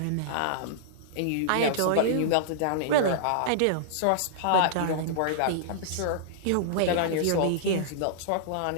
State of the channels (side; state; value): both; different; correlation -0.02